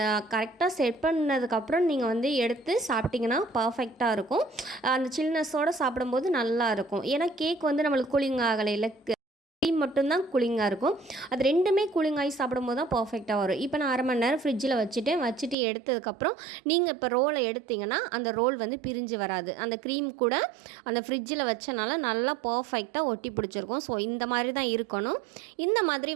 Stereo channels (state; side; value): drops out; left; at 15.6 s